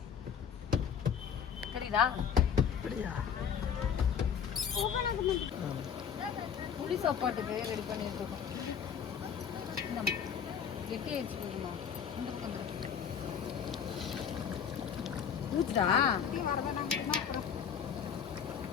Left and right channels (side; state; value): right; quieter; 7.6 dB